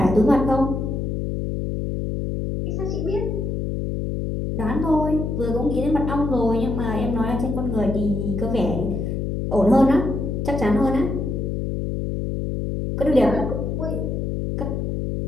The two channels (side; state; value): left; noise; hum, 2 dB below the sound